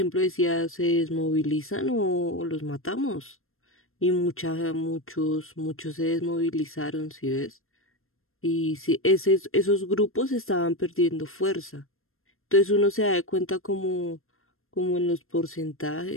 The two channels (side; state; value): right; late; 0.61 ms